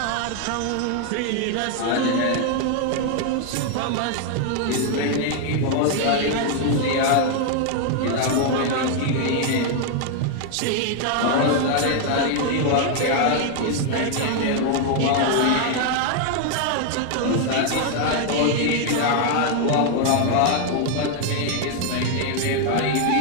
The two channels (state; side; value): different; both; correlation 0.00